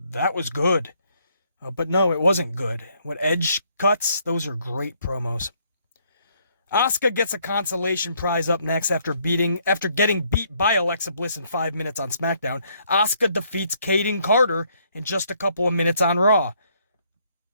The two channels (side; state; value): both; inverted; correlation -0.69